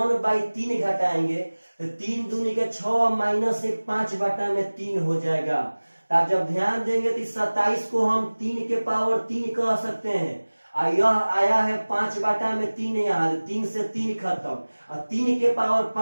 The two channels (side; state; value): both; inverted; correlation -1.00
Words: घटाएंगे तो 3 दूनी के 6 माइनस 1 5 बटा में 3 हो जाएगा। तो आप जब ध्यान देंगे तो 27 को हम 3 के पावर 3 कह सकते हैं, और यह आया है 5 बटा में 3, यहाँ 3 से 3 खत्म, और 3 के पावर